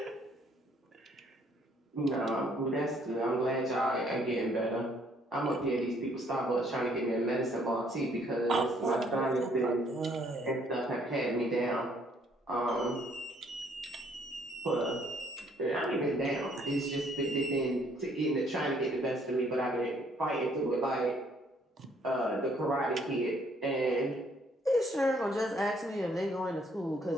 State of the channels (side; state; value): both; normal; correlation 0.65